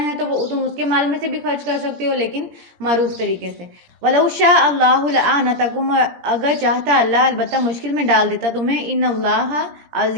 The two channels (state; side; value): late; left; 17 ms